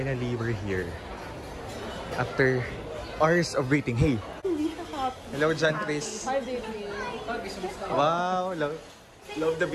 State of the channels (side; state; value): both; identical; correlation 1.00